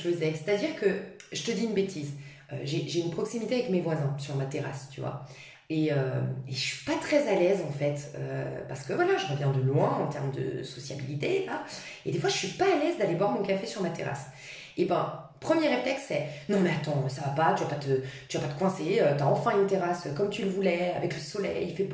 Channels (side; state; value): both; identical; correlation 1.00